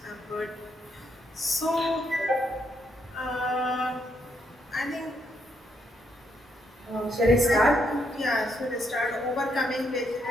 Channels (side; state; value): both; normal; correlation 0.75